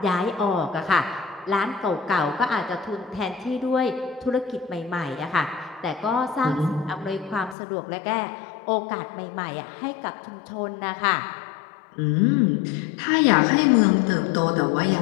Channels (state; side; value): drops out; right; at 7.6 s